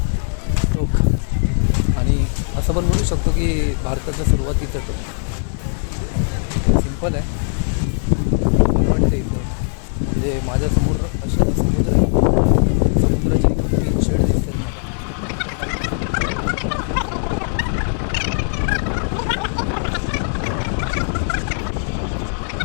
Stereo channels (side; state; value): right; silent; digital silence